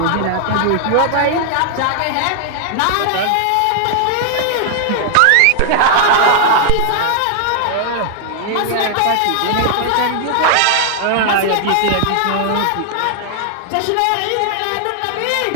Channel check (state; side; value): different; both; correlation 0.00